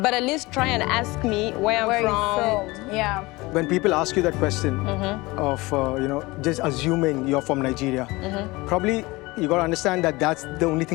at least try and ask me where I'm from. Yeah. When people ask you that question of, just assuming you're from Nigeria, probably you got to understand that that's the only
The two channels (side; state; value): right; quieter; 22.2 dB